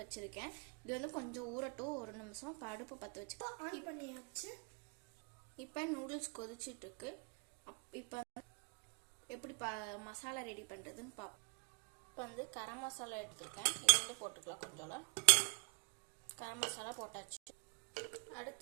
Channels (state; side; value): quieter; left; 34.8 dB